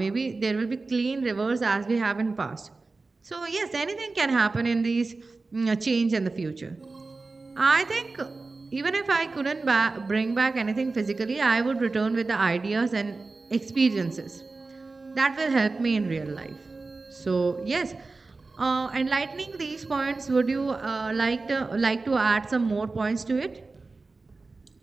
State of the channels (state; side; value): quieter; left; 3.7 dB